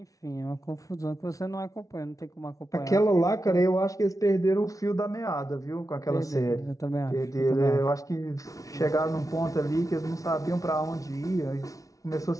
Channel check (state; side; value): late; right; 0.17 ms